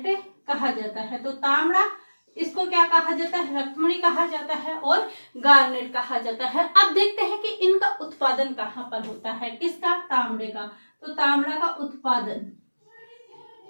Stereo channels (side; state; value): both; inverted; correlation -1.00